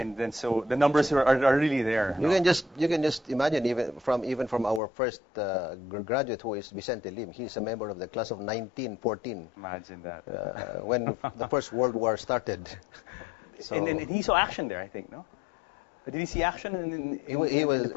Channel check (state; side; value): drops out; right; at 4.8 s